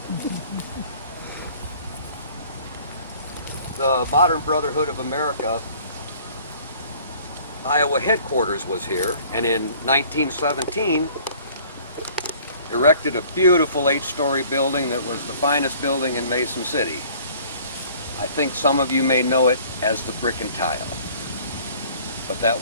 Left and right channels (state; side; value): inverted; both; correlation -0.52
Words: The Modern Brotherhood of America Iowa headquarters was here, and in 1917 erected a beautiful 8-story building that was the finest building in Mason City. I think some of you may know it as the Brick and Tile. But